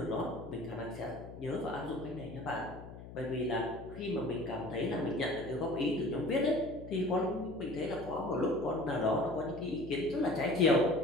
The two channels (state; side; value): noise; left; hum, 14 dB below the sound